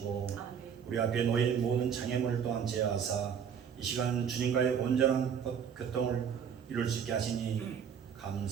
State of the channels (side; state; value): left; quieter; 7.6 dB